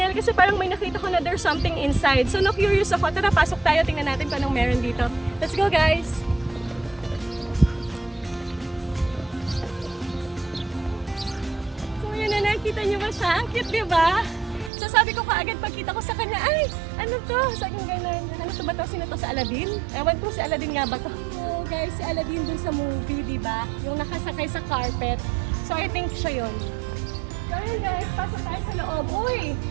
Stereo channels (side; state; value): left; drops out; at 14.7 s